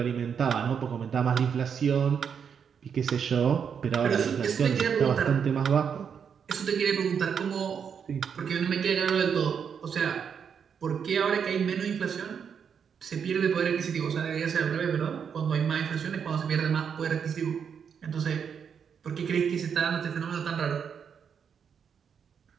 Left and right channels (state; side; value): quieter; left; 7.2 dB